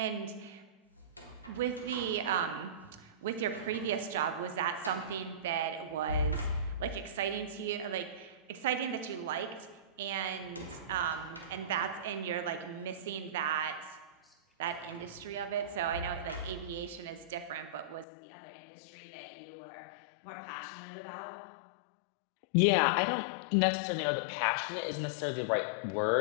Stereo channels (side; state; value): right; drops out; at 18.1 s